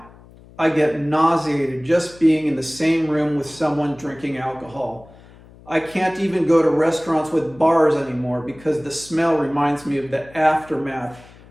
I get nauseated just being in the same room with someone drinking alcohol. I can't even go to restaurants with bars anymore because the smell reminds me of the aftermath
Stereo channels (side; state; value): left; noise; hum, 23 dB below the sound